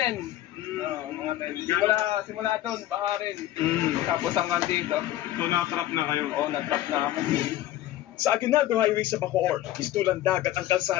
Mga 10. Simula doon, baha rin. Tapos hanggang dito. So na-trap na kayo? Oo, na-trap na kami. Sa Aguinaldo Highway sa Bacoor, istulang dagat ang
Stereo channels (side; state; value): right; quieter; 14.1 dB